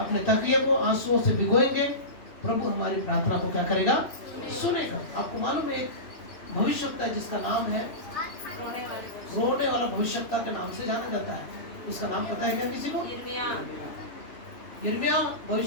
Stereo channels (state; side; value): late; right; 2.9 ms